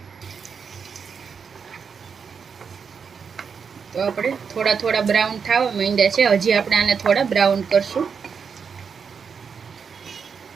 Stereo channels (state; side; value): quieter; left; 6.2 dB